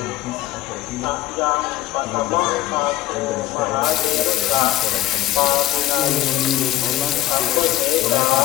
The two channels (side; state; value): right; quieter; 15.4 dB